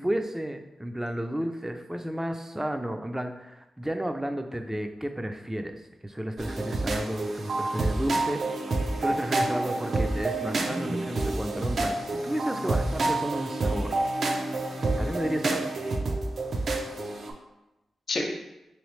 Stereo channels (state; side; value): normal; both; correlation 0.93